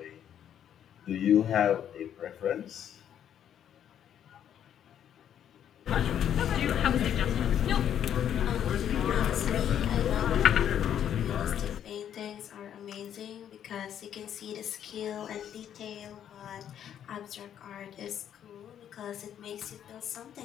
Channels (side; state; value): right; quieter; 9.7 dB